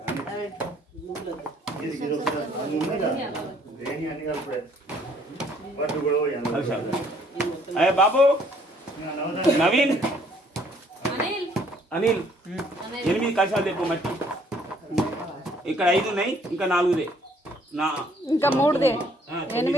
అయ్యే బాబు నవీన్ అనిల్ 8 కలశాలు తెప్పు మట్టి ఇక్కడ 5 ఉన్నాయి ఇంకా 4దే ఇంకా 3దే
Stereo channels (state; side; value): normal; both; correlation 0.62